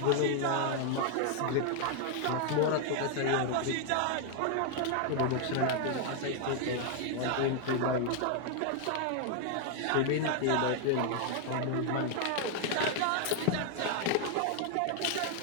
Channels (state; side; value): different; both; correlation 0.00